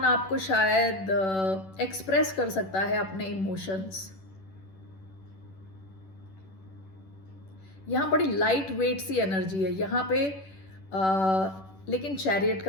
आपको शायद एक्सप्रेस कर सकता है अपने इमोशंस। यहाँ बड़ी लाइट वेट सी एनर्जी है यहाँ पे, लेकिन चैरियट का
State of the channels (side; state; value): right; late; 10 ms